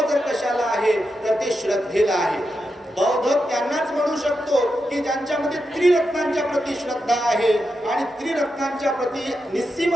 जर कशाला आहे तर ते श्रद्धेला आहे. बौद्ध त्यांनाच म्हणू शकतो की ज्यांच्यामध्ये त्रिरत्नांच्या प्रती श्रद्धा आहे. आणि त्रिरत्नांच्या प्रती निस्सीम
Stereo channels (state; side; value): normal; both; correlation 0.87